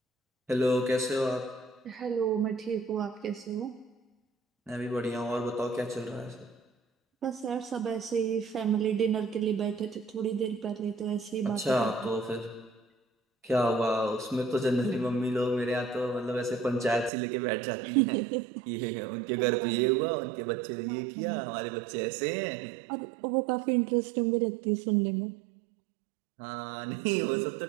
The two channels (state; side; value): drops out; left; at 17.1 s